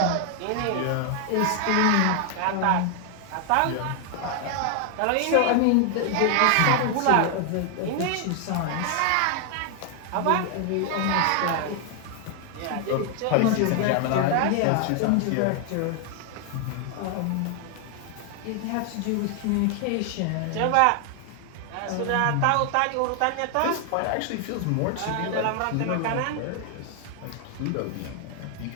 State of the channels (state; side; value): different; both; correlation 0.00